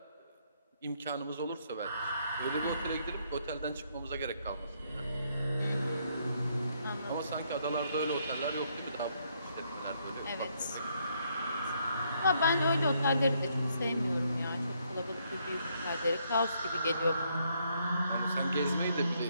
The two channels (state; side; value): inverted; both; correlation -0.72